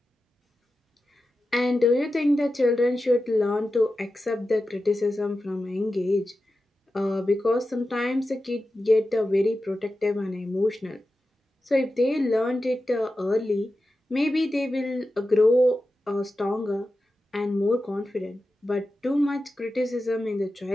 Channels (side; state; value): both; normal; correlation 0.92